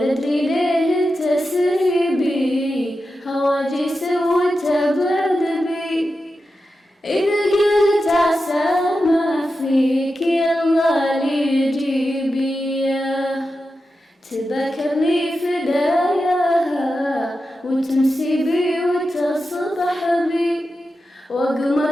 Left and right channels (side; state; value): both; normal; correlation 0.90